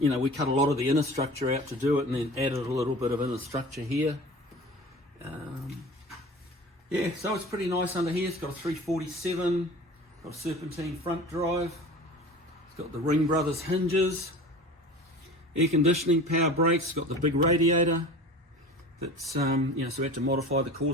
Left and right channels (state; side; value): normal; both; correlation 0.38